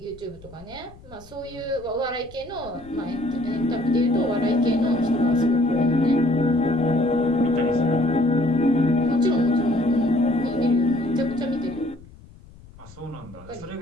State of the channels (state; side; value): noise; left; rumble, 21 dB below the sound